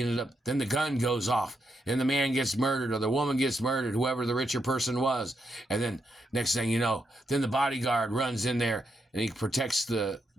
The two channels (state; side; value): normal; both; correlation 0.82